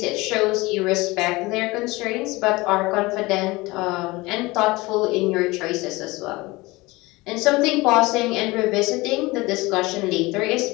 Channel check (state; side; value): quieter; right; 21.9 dB